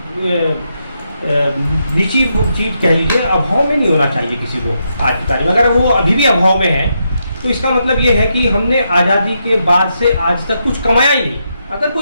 नीची चीज कह लीजिए, अभाव में नहीं होना चाहिए किसी को आज की तारीख में। अगर वो अभी भी अभाव में है, तो इसका मतलब ये है कि हमने आज़ादी के बाद से आज तक कुछ कमाया ही नहीं। अगर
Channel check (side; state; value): both; inverted; correlation -0.81